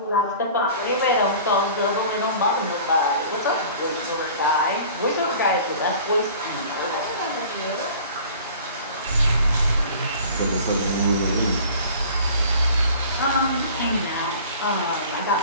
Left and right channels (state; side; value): inverted; both; correlation -0.44